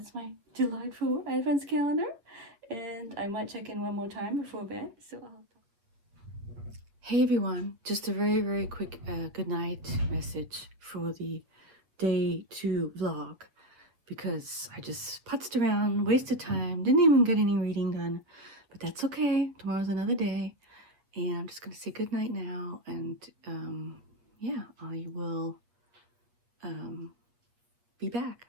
my delightful Advents calendar. And I might check in one more time before bed. So hey everyone, just a very, very quick good night message for the day 2 vlog, because I just putzed around, wasted time, didn't even get any reading done, but that's okay. Tomorrow's another day, and I'm just gonna say good night now, and yeah, I will be back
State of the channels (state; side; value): late; left; 8.2 ms